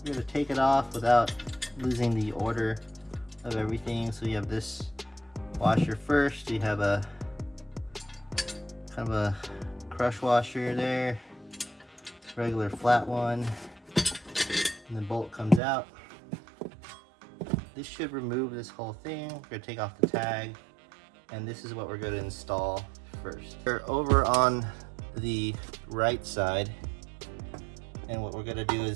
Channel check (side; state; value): left; drops out; at 15.6 s